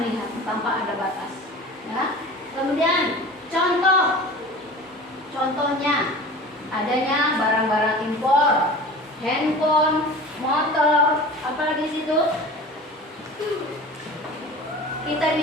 tanpa ada batas. Ya. Kemudian contohnya adanya barang-barang impor, handphone, motor, apalagi situ. Kita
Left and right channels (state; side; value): normal; both; correlation 0.38